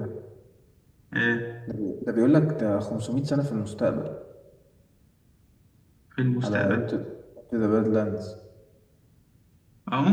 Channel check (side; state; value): both; identical; correlation 1.00